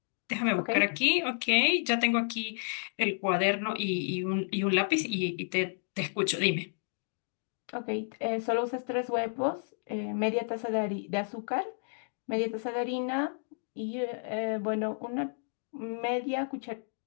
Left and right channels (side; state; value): right; silent; digital silence